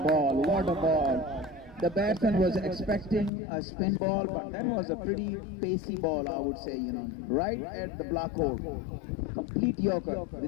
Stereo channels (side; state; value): right; drops out; at 3.3 s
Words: What a ball! The batsman was expecting a spin ball, but that was a pretty pacey ball, I would say. Right at the black hole. Complete yorker